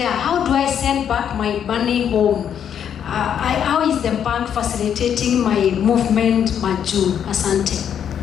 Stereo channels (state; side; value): quieter; right; 8.7 dB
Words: How do I send back my money home? How is the bank facilitating my movement, Maju? Asante.